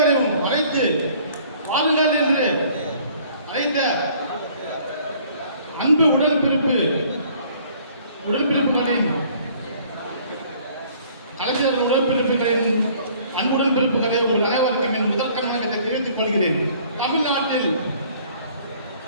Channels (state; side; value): inverted; both; correlation -0.56